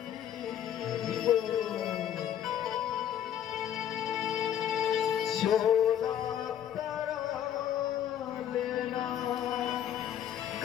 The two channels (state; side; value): quieter; right; 10.2 dB